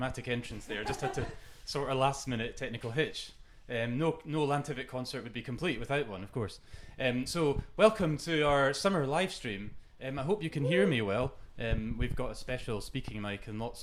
entrance there. Just had to sort a last-minute technical hitch. No Lantivet concert would be complete without one, of course. So welcome to our summer live stream. I hope you can hear me well. We've got a special speaking mic and lots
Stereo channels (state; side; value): identical; both; correlation 1.00